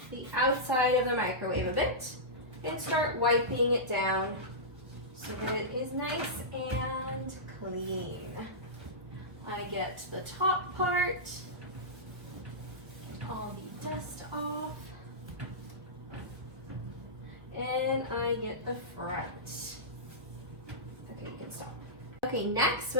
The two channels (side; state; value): left; late; 1.6 ms